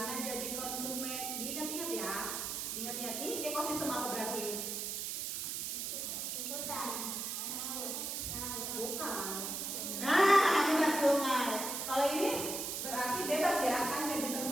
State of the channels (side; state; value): right; noise; hiss, 3 dB below the sound